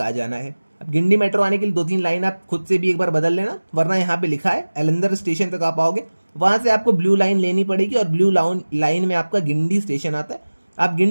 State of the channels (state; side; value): inverted; both; correlation -1.00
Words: आ जाना है। अब गिंडी मेट्रो आने के लिए दो तीन लाइन आप खुद से भी एक बार बदल लेना, वरना यहाँ पे लिखा है एलंदर स्टेशन तक आप आओगे, वहाँ से आपको ब्लू लाइन लेनी पड़ेगी और ब्लू लाइन में आपका गिंडी स्टेशन आता है, आप